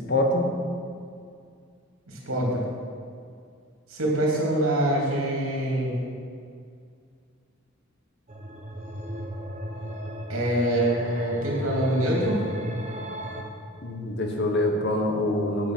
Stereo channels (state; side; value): normal; both; correlation 0.35